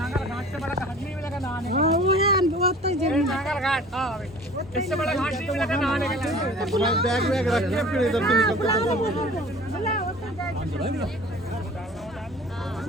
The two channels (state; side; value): normal; both; correlation 0.45